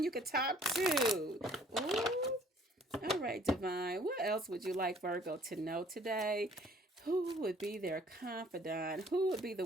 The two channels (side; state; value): both; normal; correlation 0.57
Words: you could talk to. Ooh. All right, Divine. What else would you like Virgo to know today? Who would be their confidant? Who would be the